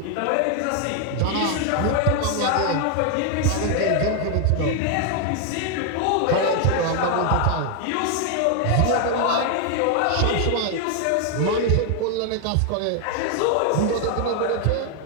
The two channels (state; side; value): different; both; correlation 0.00